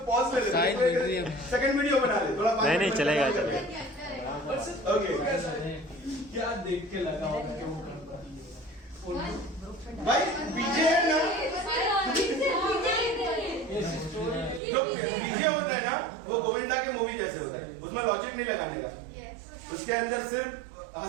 पॉज ले ले, सेकंड वीडियो बना ले थोड़ा। नहीं चलेगा। ओके, क्या देख के लगा होगा कि वो गणपति है? भाई पीछे है ना, जो पीछे होता है ना वो गोविंदा के मूवी जैसे होता है, उसमें लॉजिक नहीं लगाने का, उसके अंदर सिर्फ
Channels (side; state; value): left; drops out; at 14.6 s